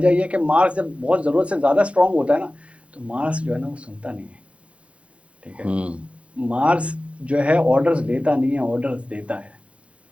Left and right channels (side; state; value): left; late; 0.062 ms